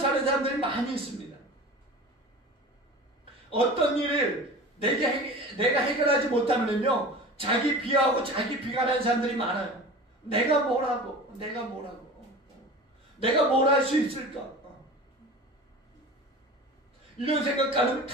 사람들이 많이 있습니다. 어떤 일을 내가 해결하지 못하면요, 자기 비하하고 자기 비관하는 사람들이 많아요. 내가 뭘 할 수 있을까? 이런 생각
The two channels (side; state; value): both; normal; correlation 0.36